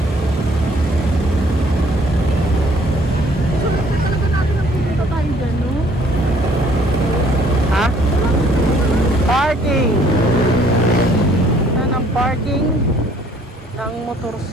So, talaga natin ang pupunta tayo dyan, no? Ha? Parking! Saan ang parking ng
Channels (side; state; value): both; normal; correlation 0.60